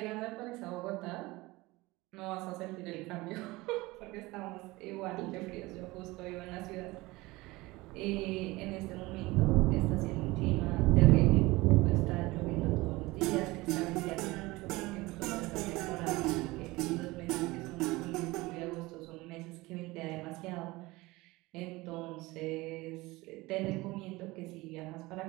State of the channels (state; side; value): quieter; left; 21.1 dB